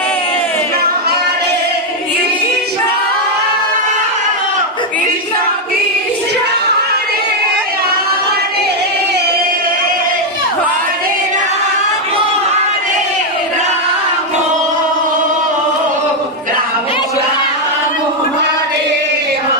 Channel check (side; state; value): both; normal; correlation 0.01